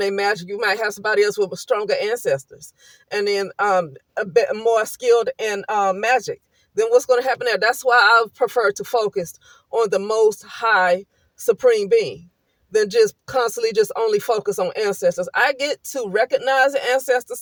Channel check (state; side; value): identical; both; correlation 1.00